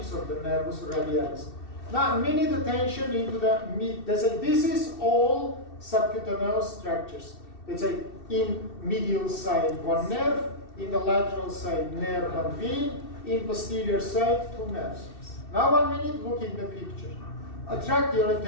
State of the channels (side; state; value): right; late; 2.7 ms